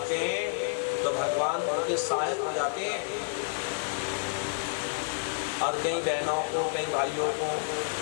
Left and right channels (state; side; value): silent; right; digital silence